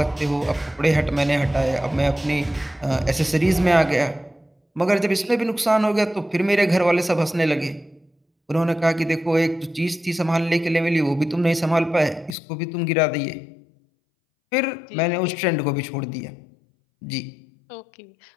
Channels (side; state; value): right; drops out; at 12.4 s